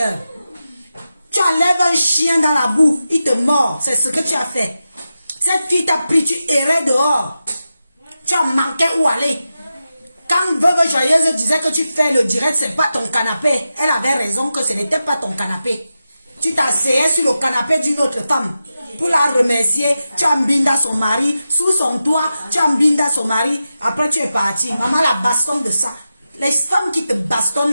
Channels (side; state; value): both; inverted; correlation -0.91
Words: Tu enlèves un chien dans la boue, il te mord. C'est ce que tu as fait. Cette fille t'a pris, tu errais dehors. Tu as manqué où aller. Quand Veuve Joyeuse disait que tu fais le direct, c'est pas ton canapé. Elle avait raison que ce n'était pas ton canapé. Tu t'asseyais sur le canapé d'une autre femme. Pour la remercier, tu as mbinda son mari. Sous son toit, tu as mbinda son mari. Après, tu es parti. Maman la bastonne de ça. Les femmes qui te bastonnent